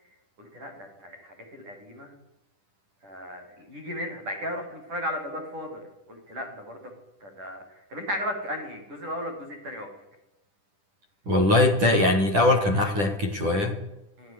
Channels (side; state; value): left; late; 10 ms